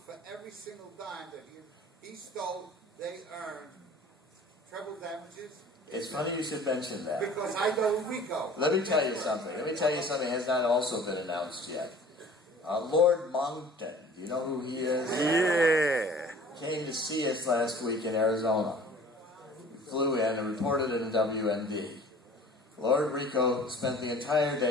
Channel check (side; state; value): both; normal; correlation 0.48